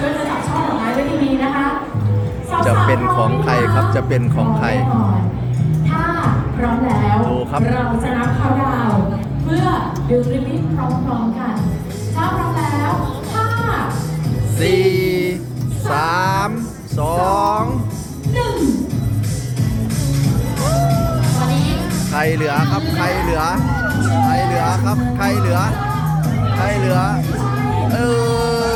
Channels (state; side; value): identical; both; correlation 1.00